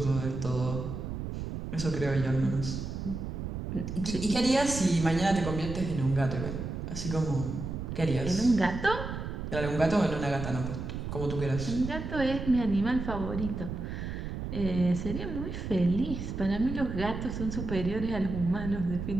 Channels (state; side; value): noise; right; rumble, 6 dB below the sound